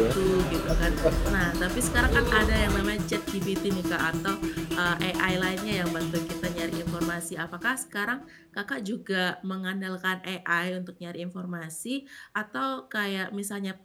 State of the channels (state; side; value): identical; both; correlation 1.00